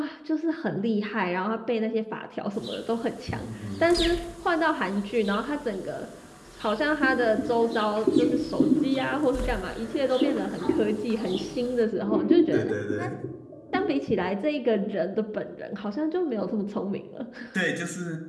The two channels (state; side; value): identical; both; correlation 1.00